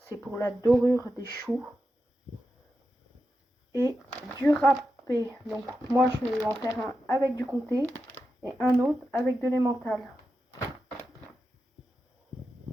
pour la dorure des choux. Et du râpé, donc moi je vais en faire un avec du comté et un autre avec de l'emmental.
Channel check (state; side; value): normal; both; correlation 0.89